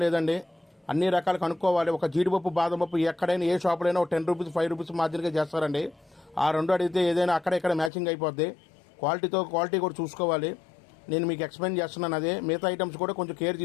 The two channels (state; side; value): drops out; right; at 7.9 s